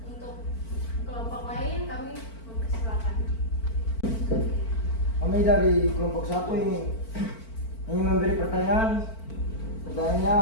Untuk kelompok lain kami mempersilakan. Kami dari kelompok 1 ingin memberi pertanyaan. Pertanyaannya,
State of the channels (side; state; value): right; late; 4.5 ms